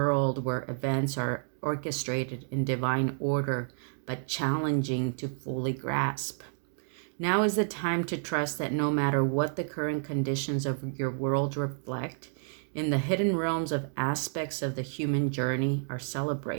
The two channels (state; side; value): silent; left; digital silence